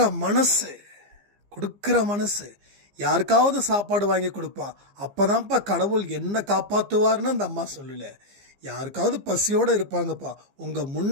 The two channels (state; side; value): late; left; 15 ms